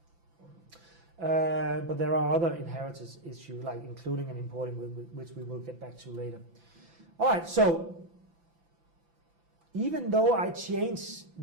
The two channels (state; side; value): late; left; 5.9 ms